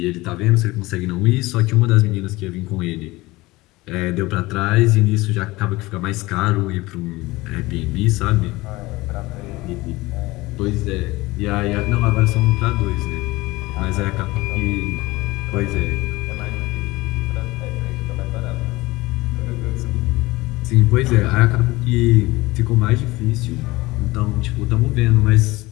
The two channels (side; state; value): right; quieter; 20.4 dB